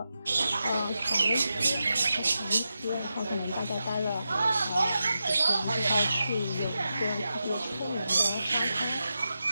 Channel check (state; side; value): inverted; both; correlation -0.89